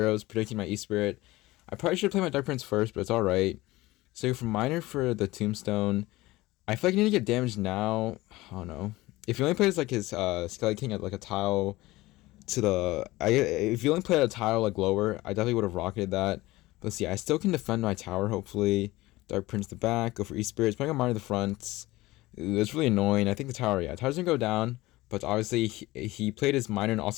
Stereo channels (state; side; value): quieter; right; 19.1 dB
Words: predicting my E-Spirit. I probably should play my Dark Prince first, but it's alright. So go for Minor for the Tombstone. I feel like I need to get damage now. I don't know. If he only plays like his Skelly King at like a tile to if you only played a tile like lower, I definitely would have rocketed that. But let's see, I still can defend my tower, hopefully. Dark Prince the back, go for E-Spirit, playing on Minor the front. Ooh, it's really annoying. I think the tower's gonna go down. But obviously, he played his Minor and